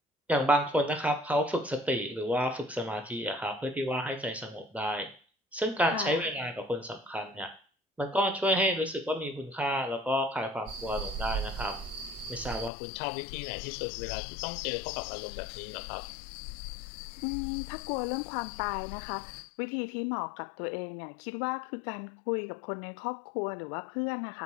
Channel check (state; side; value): drops out; right; at 12.7 s